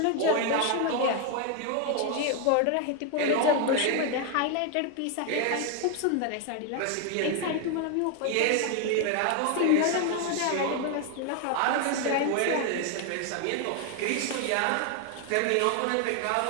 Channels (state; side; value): different; both; correlation 0.01